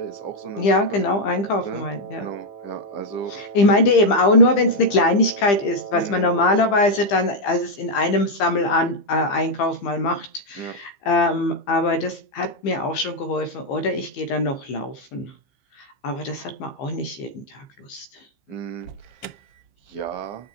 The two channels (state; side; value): late; right; 15 ms